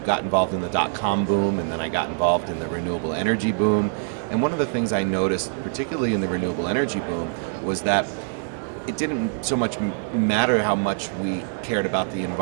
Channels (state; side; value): silent; left; digital silence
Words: got involved in the dot-com boom, and then I got involved in the renewable energy boom. And one of the things I noticed, particularly in the renewable energy boom, was that it didn't so much matter how much we cared about the